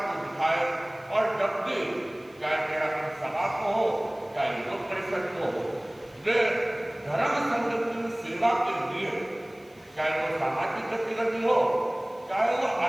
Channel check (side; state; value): left; noise; hiss, 30 dB below the sound